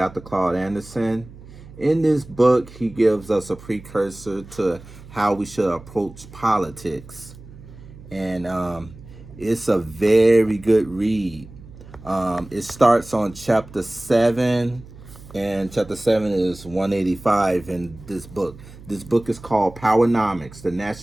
Claud Anderson. In this book, he gives us a precursor to how we should approach politics. And it's a very good read. It starts on chapter 7, and chapter 7 is 185 in this book. This book is called PowerNomics, the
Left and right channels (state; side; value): noise; right; hum, 18 dB below the sound